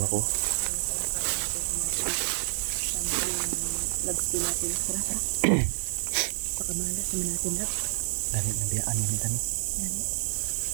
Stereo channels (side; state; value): left; silent; 59 dB below the other